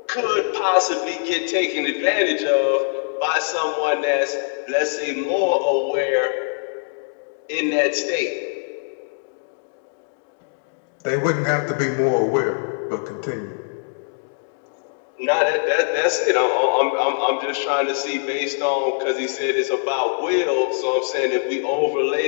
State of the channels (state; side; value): silent; right; digital silence